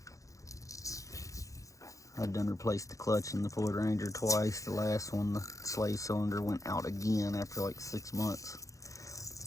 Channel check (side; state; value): right; late; 0.16 ms